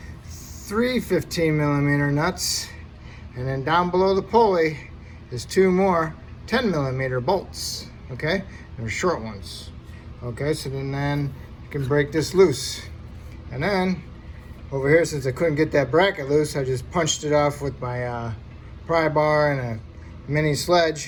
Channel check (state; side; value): identical; both; correlation 1.00